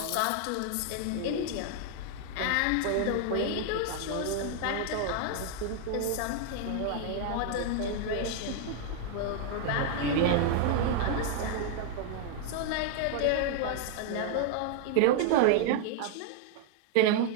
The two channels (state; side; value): different; both; correlation 0.00